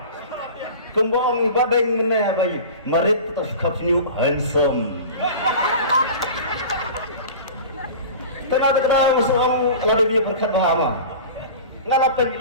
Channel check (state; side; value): inverted; both; correlation -0.36